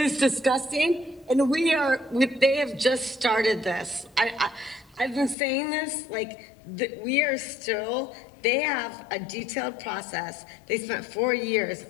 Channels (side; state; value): right; drops out; at 5.4 s